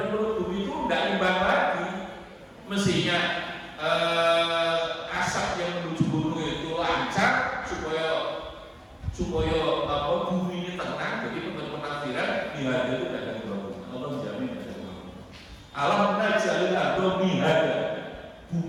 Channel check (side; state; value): both; identical; correlation 1.00